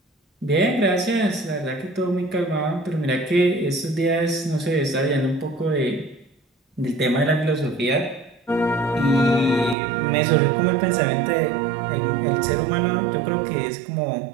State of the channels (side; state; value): left; drops out; at 9.8 s